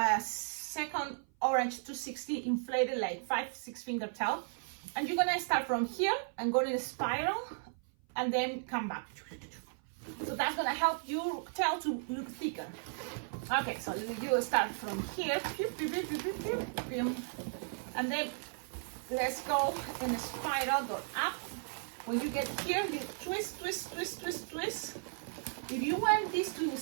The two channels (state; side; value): silent; left; 54 dB below the other